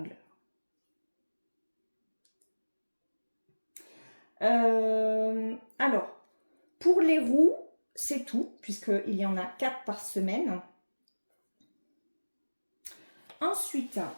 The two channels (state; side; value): inverted; both; correlation -1.00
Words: Alors, pour les roues, c'est tout, puisqu'il y en a 4 par semaine. Ensuite,